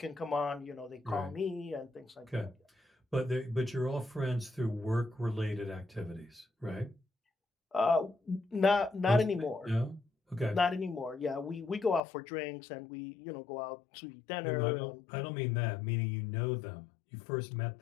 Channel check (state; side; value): drops out; right; at 12.0 s